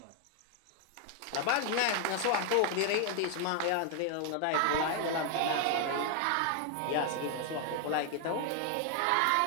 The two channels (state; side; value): different; both; correlation 0.00